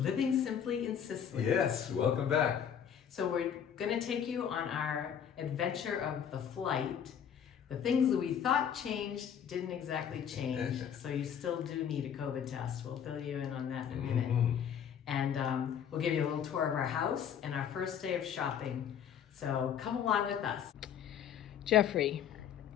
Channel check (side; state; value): right; quieter; 8.6 dB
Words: Simply in Sicily. Yes, welcome back. So we're going to take you on our adventure of the flight. The things that we thought changed didn't exactly change, so you still do need a COVID test. We'll fill you in on that in a minute. And we'll give you a little tour of our house and our first day of shopping. So come along with us. Jeffrey,